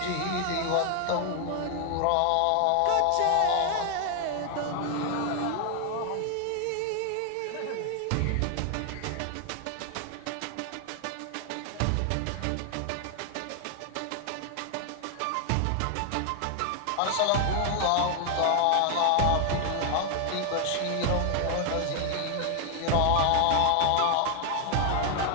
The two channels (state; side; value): different; both; correlation 0.00